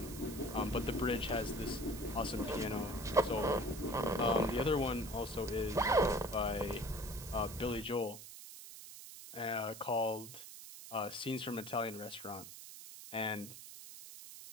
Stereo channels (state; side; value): noise; right; hiss, 13 dB below the sound